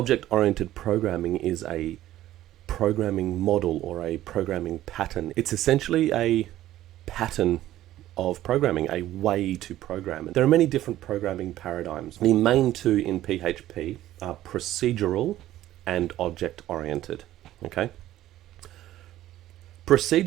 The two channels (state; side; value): quieter; left; 14.0 dB